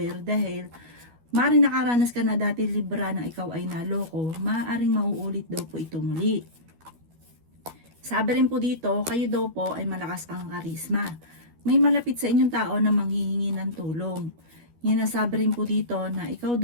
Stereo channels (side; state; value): left; late; 12 ms